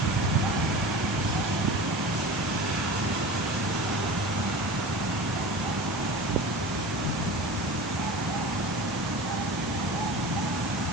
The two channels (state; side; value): normal; both; correlation 0.33